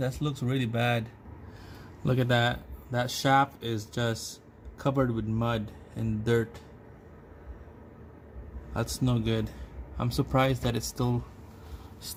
looks really bad. Look at that. That shaft is just covered with mud and dirt. That's no good. I'm surprised that it's still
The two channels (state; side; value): identical; both; correlation 1.00